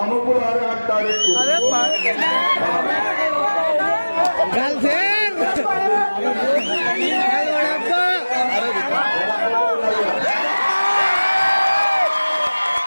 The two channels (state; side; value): inverted; both; correlation -1.00